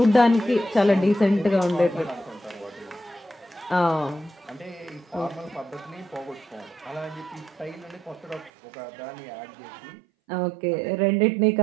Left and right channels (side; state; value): left; drops out; at 8.5 s